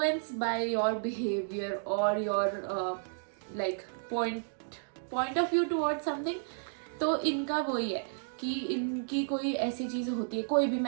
by your behavior or your like point of view towards something. तो इनका वही है कि इनकी कोई ऐसी चीज़ होती है, कोई भी,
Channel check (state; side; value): silent; left; digital silence